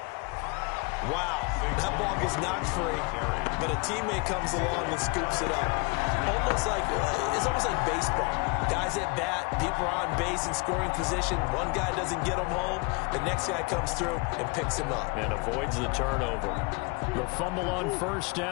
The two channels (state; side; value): quieter; right; 28.9 dB